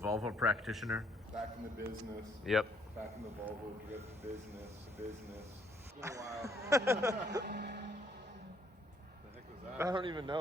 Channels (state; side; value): normal; both; correlation 0.67